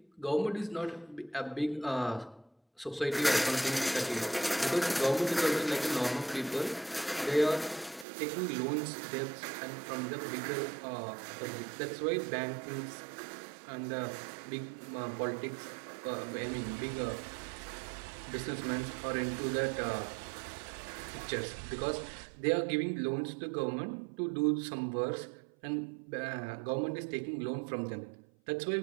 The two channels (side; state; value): left; drops out; at 8.1 s